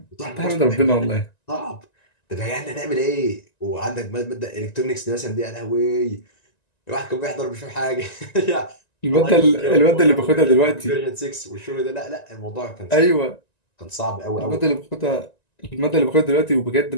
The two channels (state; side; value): late; right; 1.9 ms